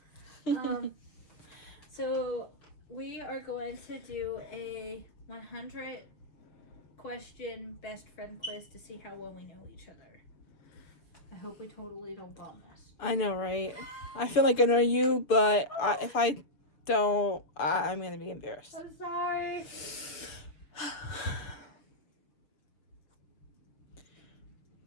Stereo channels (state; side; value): late; right; 6.6 ms